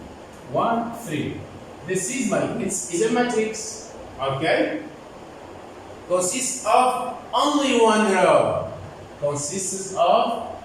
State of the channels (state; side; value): identical; both; correlation 1.00